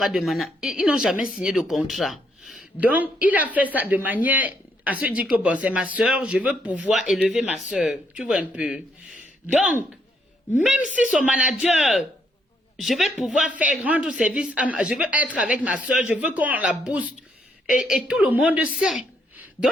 de management, ils n'ont jamais signé de contrat. Donc, il a fait ça de manière... à se dire que bon, c'est ma soeur, je veux pouvoir élever ma soeur. Tu vois un peu. Donc, même si son manager, je vais pouvoir rendre service, je veux être avec ma soeur, je veux qu'on la booste. Et tout le monde sait.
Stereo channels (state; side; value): normal; both; correlation 0.73